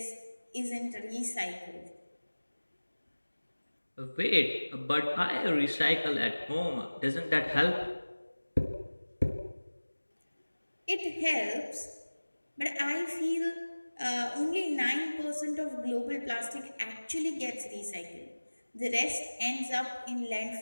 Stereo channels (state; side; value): inverted; both; correlation -1.00